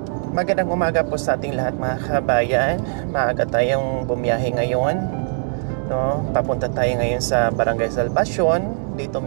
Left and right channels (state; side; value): silent; left; 59 dB below the other